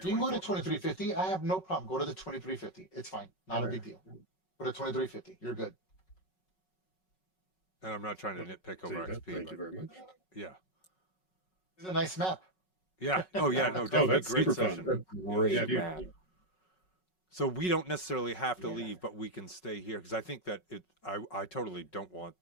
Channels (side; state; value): right; late; 5.4 ms